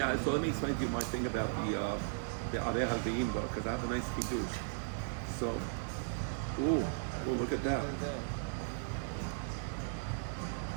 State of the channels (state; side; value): silent; left; digital silence